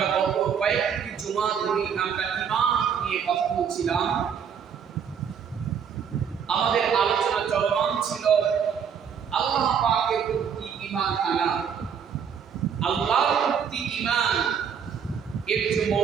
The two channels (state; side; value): quieter; left; 7.4 dB